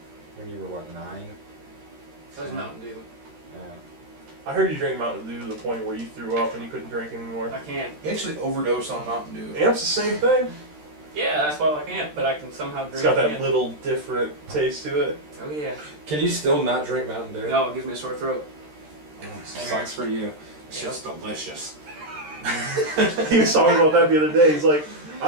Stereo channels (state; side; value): late; left; 13 ms